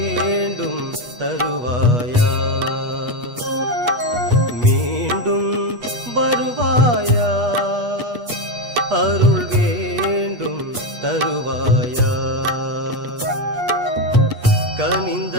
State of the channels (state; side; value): late; left; 8.3 ms